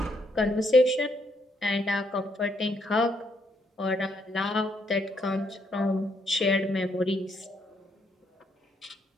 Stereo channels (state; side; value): normal; both; correlation 0.74